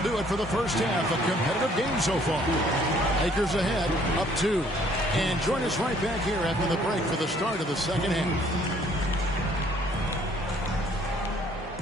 do it for the first half. A competitive game so far. Lakers ahead, up 2. And join us right back here after the break for the start of the second half.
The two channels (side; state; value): both; normal; correlation 0.61